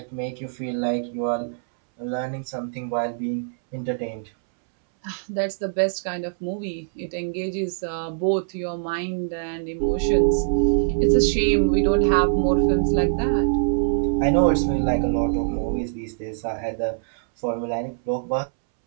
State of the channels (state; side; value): silent; left; 63 dB below the other